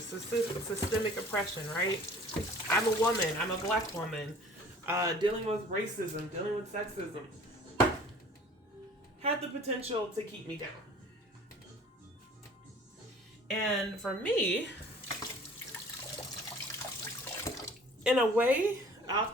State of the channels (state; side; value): normal; both; correlation 0.49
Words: systemic oppression, right? I'm a woman, I'm a black woman, dealing with racism, dealing with sexism, had the potential to keep me down. And for me, in a way,